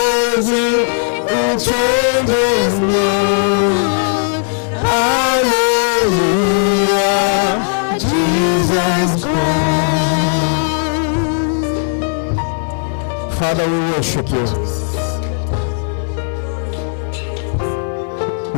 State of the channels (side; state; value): right; silent; digital silence